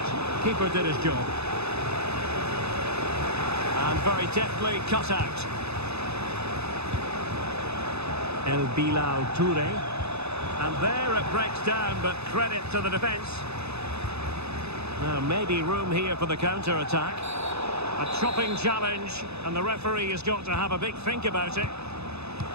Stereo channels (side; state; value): left; late; 0.79 ms